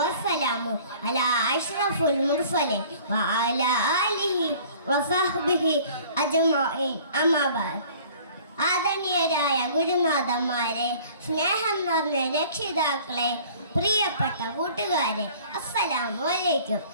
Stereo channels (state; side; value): inverted; both; correlation -0.50